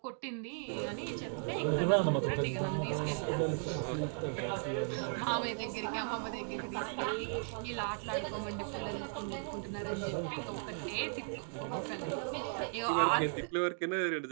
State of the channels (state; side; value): silent; left; 54 dB below the other